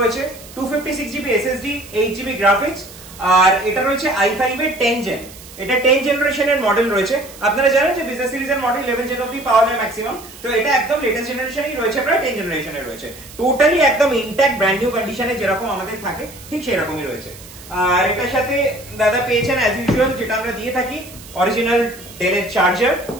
256 জিবি এসএসডি, 8 জিবি গ্রাফিক্স, আর এটা রয়েছে i5 এর 10 জেন। এটা 10 জেনারেশনের মডেল রয়েছে। আপনারা জানেন যে বিজনেস সিরিজের মডেল 11 জেন অবধি পাওয়া যায় ম্যাক্সিমাম। তো এটা একদম লেটেস্ট জেনারেশনই রয়েছে, প্রায় 10 জেনারেশনের রয়েছে। টোটালি একদম ইনট্যাক্ট ব্র্যান্ড নিউ কন্ডিশনে যেরকম আমাদের থাকে ঠিক সেরকমই রয়েছে। আর এটার সাথে দাদা পেয়েছেন অ্যাজ ইউজুয়াল যেটা আমরা দিয়ে থাকি, অরিজিনাল ডেলের চার্জার,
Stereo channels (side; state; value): right; noise; hiss, 18 dB below the sound